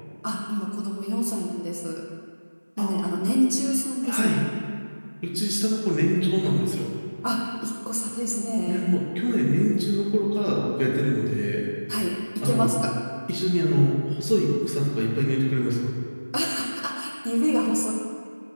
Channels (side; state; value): both; inverted; correlation -1.00